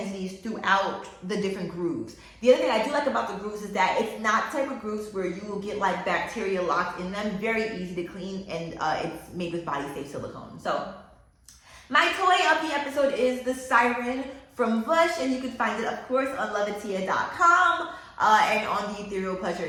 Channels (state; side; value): identical; both; correlation 1.00